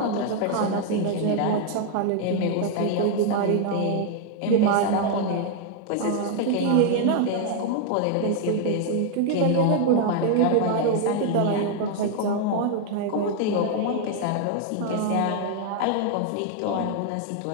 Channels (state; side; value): different; both; correlation 0.00